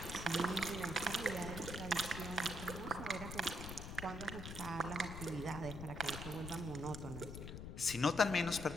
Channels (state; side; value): noise; left; rumble, 8 dB below the sound